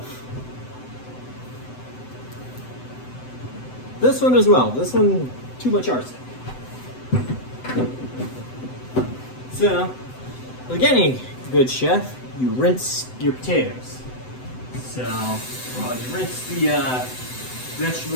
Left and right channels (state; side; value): late; right; 7.9 ms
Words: This one as well. This one, too much arsenic. So, like any good chef, you rinse your potatoes. So, well, you rinse the